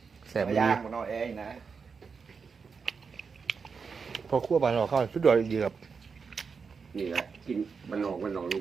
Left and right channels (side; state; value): left; quieter; 5.4 dB